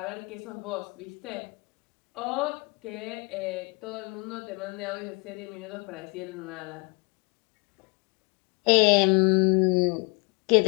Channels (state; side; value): quieter; right; 30.6 dB